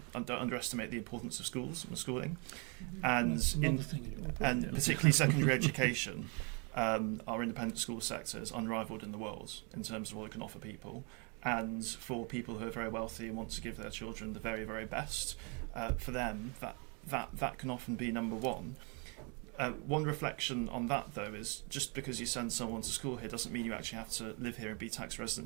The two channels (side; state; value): left; quieter; 34.4 dB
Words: underestimate the importance of schools and schooling, and particularly secondary education. Our independent school sector is unrivaled in the world in terms of what it can offer people. And for people who are very wealthy and want to give their children the very, very best, for them, that can often be number one. One reflection on that, though, is just because you send someone to school here doesn't mean you actually have to live here and be tax